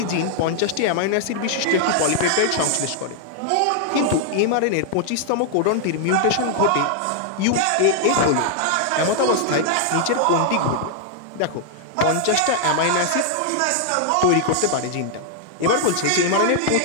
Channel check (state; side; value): different; both; correlation -0.01